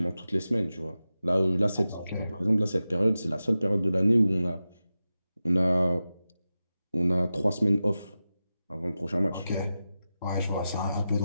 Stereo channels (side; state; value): both; inverted; correlation -0.93